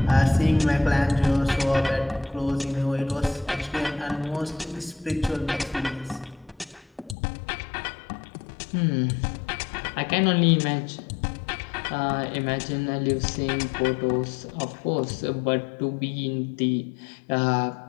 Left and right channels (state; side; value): drops out; right; at 7.2 s